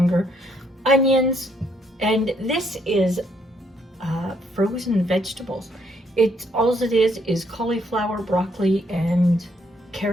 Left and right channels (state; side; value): normal; both; correlation 0.71